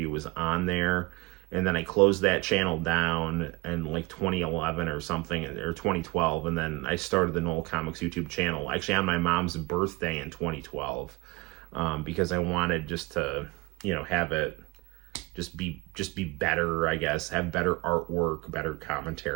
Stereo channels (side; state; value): left; quieter; 23.8 dB